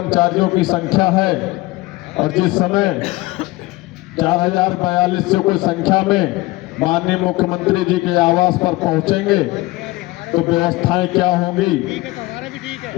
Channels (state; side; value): quieter; right; 20.2 dB